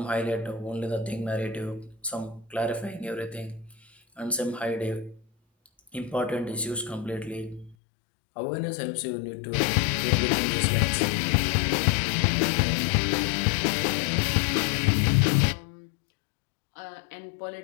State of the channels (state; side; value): drops out; right; at 7.8 s